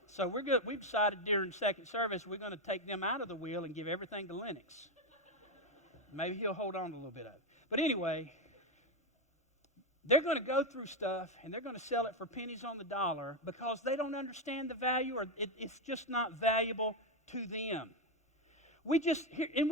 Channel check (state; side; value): normal; both; correlation 0.08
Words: So we've decided during second service we're going to take them out of the wheel and give everything to Lennox. Maybe he'll hold on to a little bit of it. But anyway, they're going to go through stuff, and they're going to sell it for pennies on the dollar because they don't understand the value, or it's just not valuable to them. And